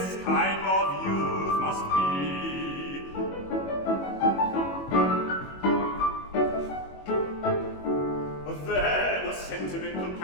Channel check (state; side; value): late; right; 21 ms